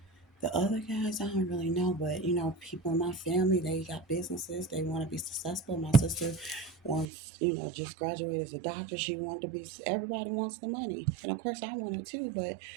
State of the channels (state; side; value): drops out; left; at 7.1 s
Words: The other guys, I don't really know, but people in my family, they got businesses. They want to be successful. My sister wants, just graduated as a doctor. She wanted to be, everybody wants the money. And of course, I want it too, but